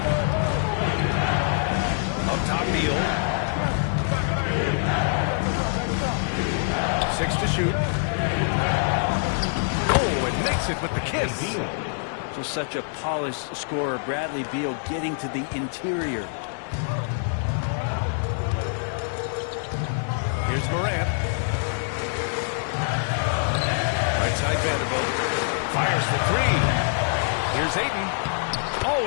Up top, Beal. 6 to shoot. Oh, and makes it with the kiss. Just such a polished scorer. Bradley Beal getting to the interior. Here's Morant. Right side Vanderbilt. Fires for three. Here's Ayton.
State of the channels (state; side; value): silent; right; 62 dB below the other